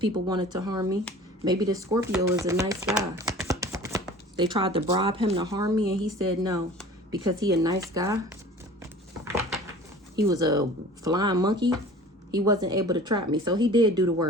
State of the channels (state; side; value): normal; both; correlation 0.44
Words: wanted to harm me. Maybe this Scorpio is a nice guy. They tried to bribe him to harm me and he said no. Because he a nice guy. He was a flying monkey. He wasn't able to trap me. So he did do the